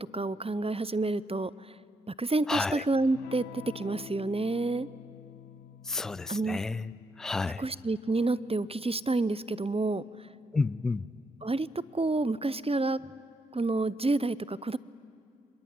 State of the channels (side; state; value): both; normal; correlation 0.78